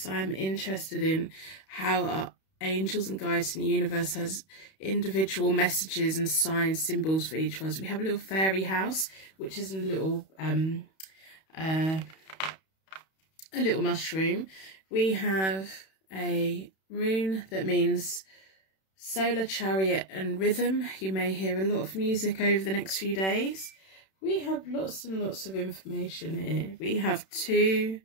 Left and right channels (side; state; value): right; late; 31 ms